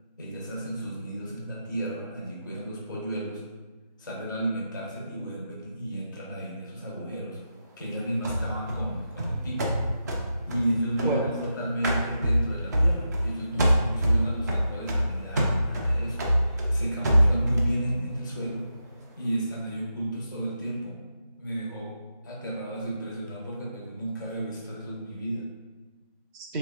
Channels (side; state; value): both; inverted; correlation -0.86